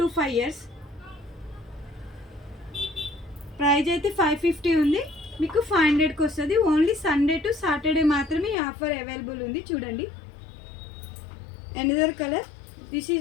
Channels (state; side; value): drops out; right; at 8.6 s